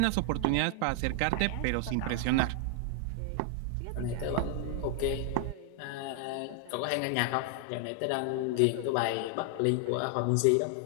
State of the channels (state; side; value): different; both; correlation 0.00